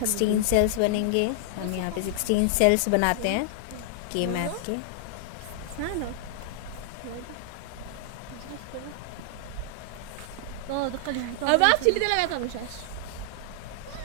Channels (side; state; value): both; different; correlation 0.00